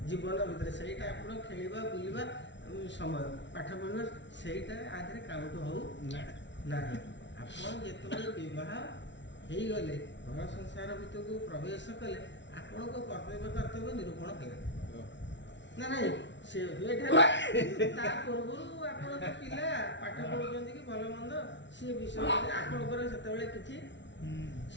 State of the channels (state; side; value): late; right; 0.52 ms